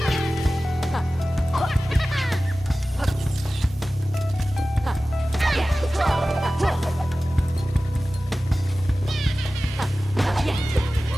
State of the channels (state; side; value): normal; both; correlation 0.96